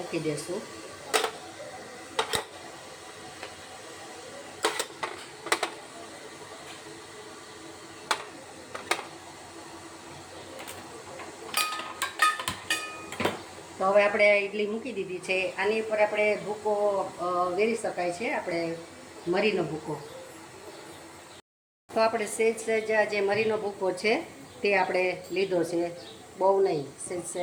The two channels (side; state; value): both; identical; correlation 1.00